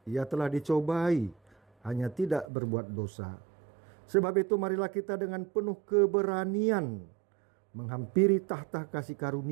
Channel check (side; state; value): left; drops out; at 2.5 s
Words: ia telah dicobai, hanya tidak berbuat dosa. Sebab itu marilah kita dengan penuh keberanian menghampiri tahta kasih